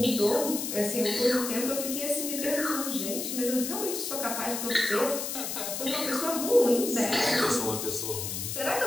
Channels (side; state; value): left; noise; hiss, 4 dB below the sound